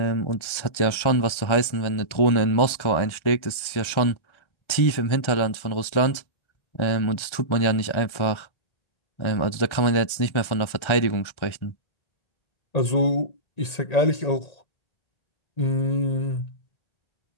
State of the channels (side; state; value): right; late; 1.4 ms